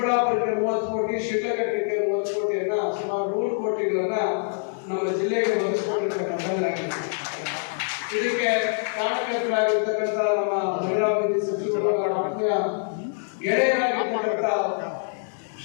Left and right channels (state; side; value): silent; right; digital silence